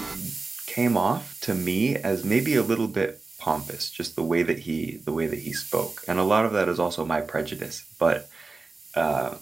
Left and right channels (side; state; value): left; quieter; 3.8 dB